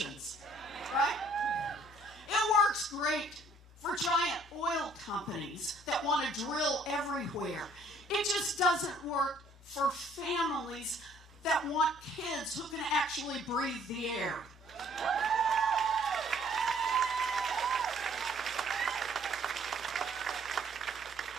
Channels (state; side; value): normal; both; correlation 0.60